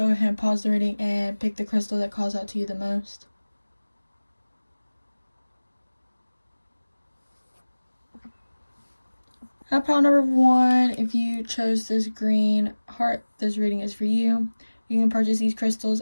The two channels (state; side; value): inverted; both; correlation -1.00